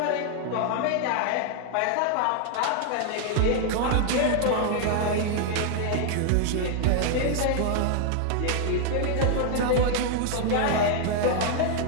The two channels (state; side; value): different; both; correlation 0.00